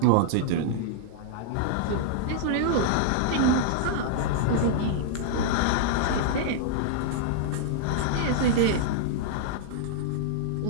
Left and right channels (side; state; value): both; different; correlation -0.01